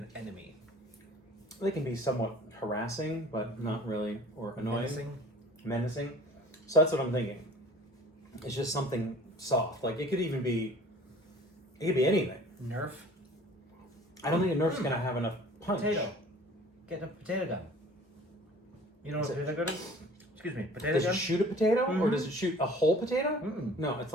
enemy. They can be somewhat harassing, but not really, or annoying. Menacing. So that's what I'm thinking. It's just something soft. Like it could be anything. Nerf. I don't think a Nerf's gonna have enough punch. Potato. Get a potato gun. You know what a potato gun is? Excuse me, potato Does gun? it shoot a potato, or Mhm. does it shoot a whole potato? Mm-mm. No, it's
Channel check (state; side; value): normal; both; correlation 0.47